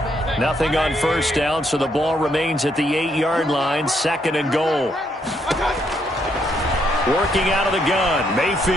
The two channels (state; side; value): normal; both; correlation 0.74